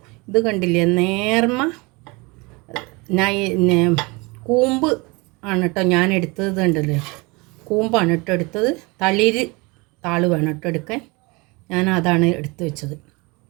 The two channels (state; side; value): quieter; left; 26.4 dB